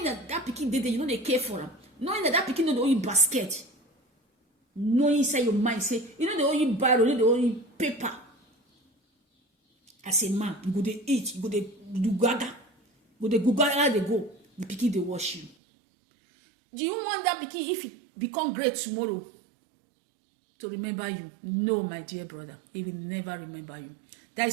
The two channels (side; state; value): left; drops out; at 15.6 s